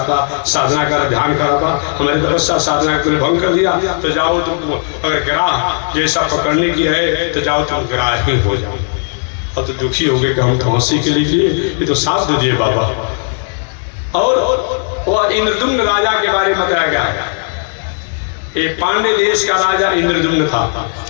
था, साधना कर ध्यान कर रहा था, हमारी तपस्या साधना को भंग कर दिया, तो जाओ तुमको अगर ग्राह जैसा पकड़ने की है तो जाओ तुम ग्राह ही हो जाओ। और तो दुखी हो गए कि हम तो हंसी के लिए किए, ये तो साथ दे दिए बाबा। और वह इंद्रदुम्न राजा के बारे में बताया गया है। एक पांड्य देश का राजा इंद्रदुम्न था,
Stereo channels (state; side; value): silent; right; 68 dB below the other